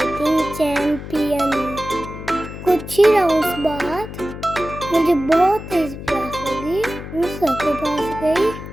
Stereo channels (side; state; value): left; noise; hum, 11 dB below the sound